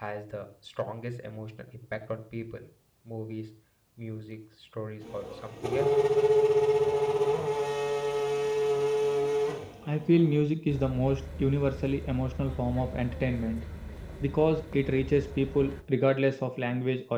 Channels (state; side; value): identical; both; correlation 1.00